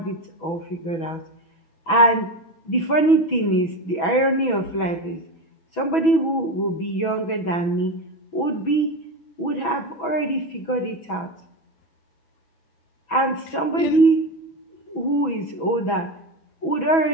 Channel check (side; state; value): right; late; 6.1 ms